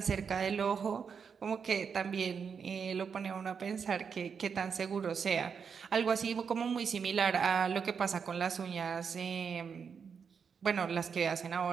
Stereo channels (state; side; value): quieter; left; 6.4 dB